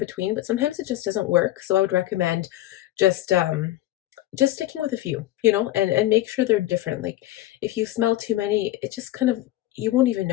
but sometimes it just doesn't work. So I would recommend just sticking with a few, and make sure they're different. Like if you smell too many, it just kind of, you won't even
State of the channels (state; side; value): quieter; right; 14.9 dB